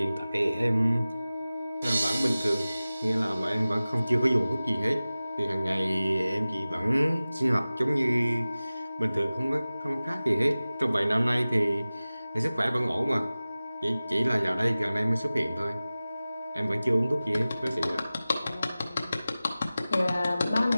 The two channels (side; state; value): both; inverted; correlation -0.97